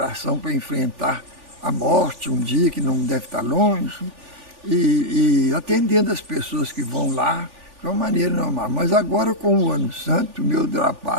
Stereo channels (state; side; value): late; left; 3.4 ms